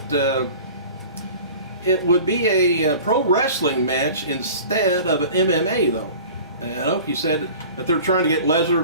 it would be a pro wrestling match instead of an MMA, though. Inoki said that they're trying to get Lesnar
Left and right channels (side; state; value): both; inverted; correlation -0.42